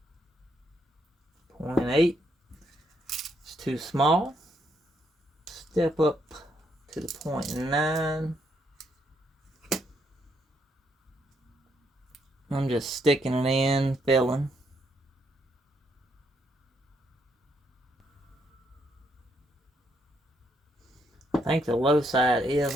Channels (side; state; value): both; normal; correlation 0.75